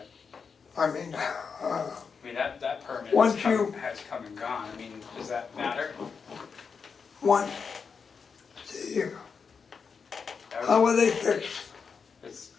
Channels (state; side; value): quieter; right; 5.7 dB